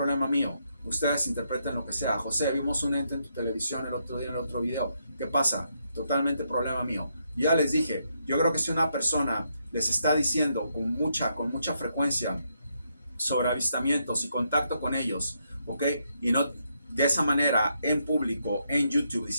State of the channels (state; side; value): inverted; both; correlation -0.78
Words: mío. Ustedes interpreten lo que sea. José, vimos un ente en tu televisión el otro día en el otro video. ¿Qué pasa? Totalmente problema mío. Ya les dije, yo creo que si una persona les está diciendo con mucha frecuencia sobre avistamientos y contacto con ellos, ¿ok? Y no de esa manera en público, en YouTube,